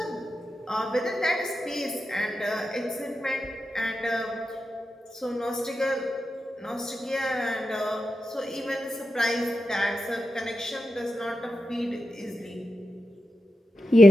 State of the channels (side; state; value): both; normal; correlation 0.89